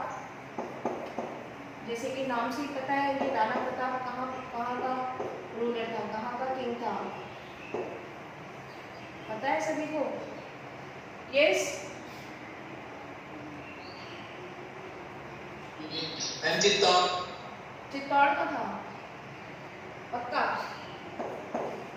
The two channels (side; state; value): both; identical; correlation 1.00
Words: जैसे कि नाम से ही पता है ये राणा प्रताप कहाँ का रूलर था, कहाँ का किंग था, पता है सभी को? यस, चित्तौड़ का था पक्का?